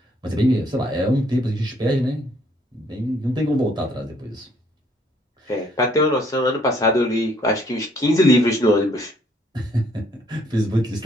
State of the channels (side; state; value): both; normal; correlation 0.65